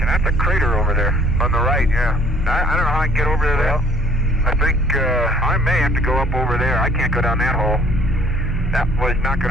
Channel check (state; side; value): normal; both; correlation 0.57